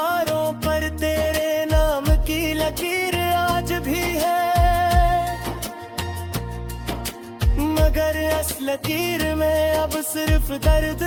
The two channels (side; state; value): both; identical; correlation 1.00